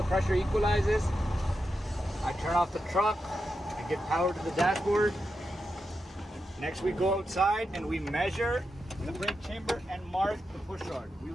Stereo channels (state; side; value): normal; both; correlation 0.88